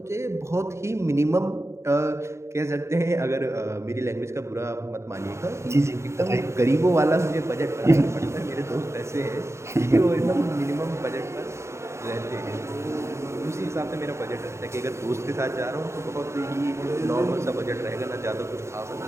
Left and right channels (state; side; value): late; left; 0.14 ms